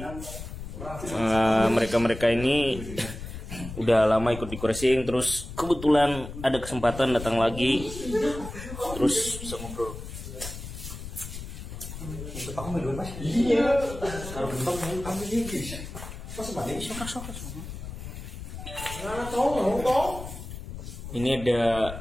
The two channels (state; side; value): noise; left; rumble, 10 dB below the sound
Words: mereka ini udah lama ikut dekorasi, terus kebetulan ada kesempatan datang lagi, terus bisa ngobrol. Aku main dulu Mas. Iya. Kalau bentuk ambil lagi. Pas balik sok. Ini ada